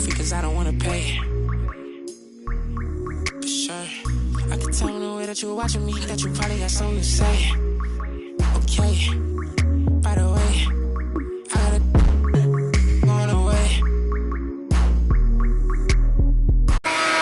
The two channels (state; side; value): identical; both; correlation 1.00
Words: cause I don't wanna pay. For sure, I can tell in the way that you're watching me that you probably got something to say. Okay, by the way, I gotta going away.